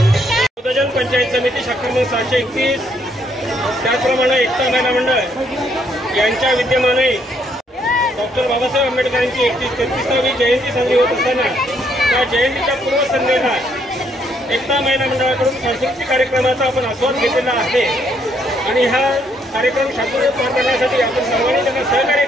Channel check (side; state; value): both; normal; correlation 0.71